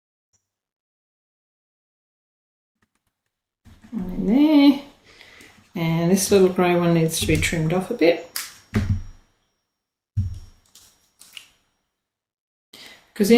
One in there, and this little grey one needs to be trimmed off a bit, because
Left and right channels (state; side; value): identical; both; correlation 1.00